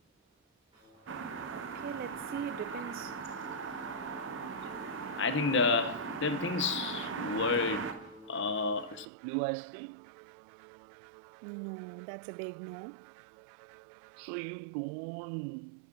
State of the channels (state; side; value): drops out; left; at 9.1 s